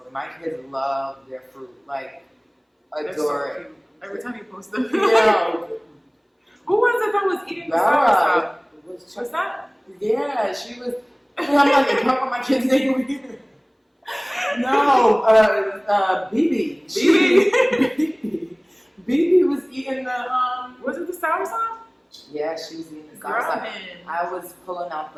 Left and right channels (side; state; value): both; identical; correlation 1.00